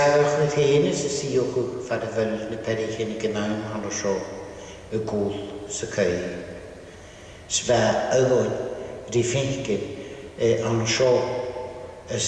chwyd hyn ys y siwch far y fel na perich yn y gynawn han o sio y gwl sy cael. Sfa ygon rifengen an o sio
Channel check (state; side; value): identical; both; correlation 1.00